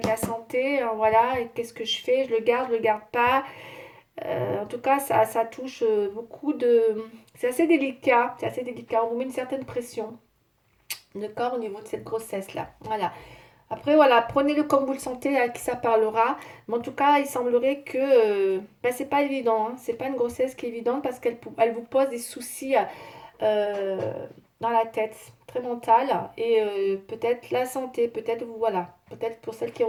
la santé, hein, voilà. Et qu'est-ce que je fais? Je le garde pas. En tout cas, ça touche beaucoup de. C'est assez délicat, c'est assez délicat. On vous met une certaine pression, d'accord, au niveau de cette grossesse-là. Voilà. Après, voilà, prenez-le comme vous le sentez, à qui ça parlera. Mais en tout cas, il semblerait que ben, c'est pas évident, hein. C'est pas une grossesse qui est évidente parce elle vous pose des soucis euh, dans la tête, très mentale. Et peut-être la santé, peut-être voilà. Peut-être pour celles qui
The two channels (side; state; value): both; identical; correlation 1.00